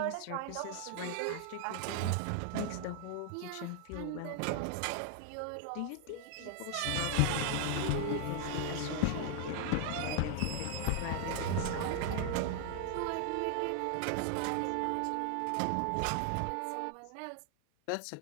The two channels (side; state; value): both; different; correlation 0.00